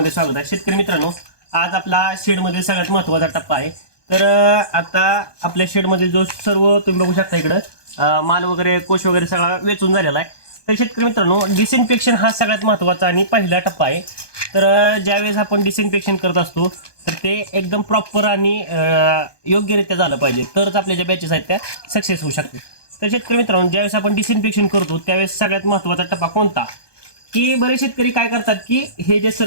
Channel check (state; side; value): late; right; 1.2 ms